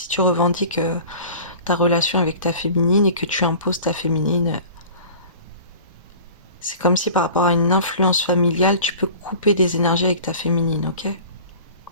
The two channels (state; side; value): inverted; both; correlation -0.42